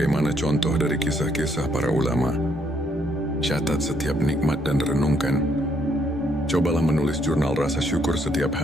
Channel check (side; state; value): both; normal; correlation 0.71